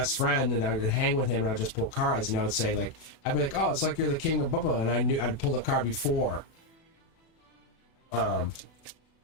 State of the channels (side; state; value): right; late; 36 ms